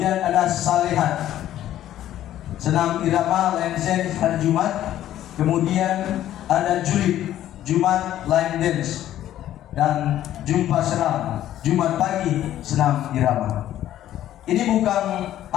ada Salehat, Senam Irama Line Dance hari Jumat. Kemudian ada Julid, Jumat Line Dance. Dan Jumpa Seram, Jumat pagi senam irama. Ini bukan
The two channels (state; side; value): quieter; right; 12.5 dB